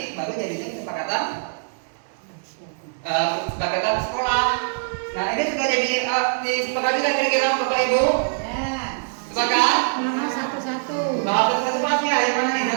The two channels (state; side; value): silent; left; 63 dB below the other